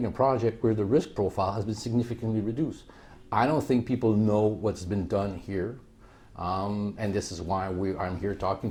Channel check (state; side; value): identical; both; correlation 1.00